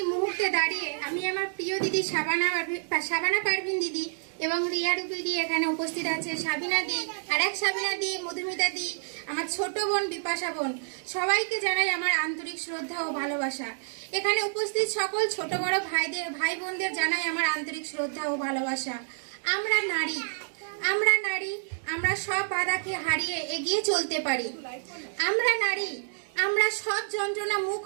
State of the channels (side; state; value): left; silent; digital silence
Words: মুহূর্তে দাঁড়িয়ে আমি আমার প্রিয় দিদি শাবানা পারভিন দিদি এবং রিয়া রূপী দি এখানে উপস্থিত আছে, সাবিনা দি, আর এক সাবিনা দি, মধুমিতা দি, আমার ছোট বোন বিপাশা বোন, সবাইকে জানাই আমার আন্তরিক শ্রদ্ধা ও ভালোবাসা। এখানে উপস্থিত সকল ছোট বড় ভাই বোনদের জানাই আমার আন্তরিক শ্রদ্ধা ও ভালোবাসা। আমরা নারী, আমরা সব বাধাকে হারিয়ে এগিয়ে চলতে পারি। আমরা নারী, আমরা সব যন্ত্রণা মুখ